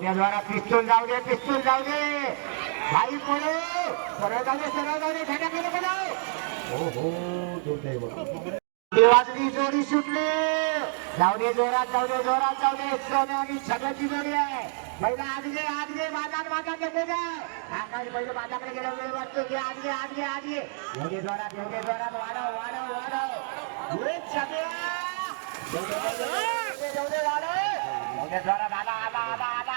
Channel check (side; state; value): left; silent; 59 dB below the other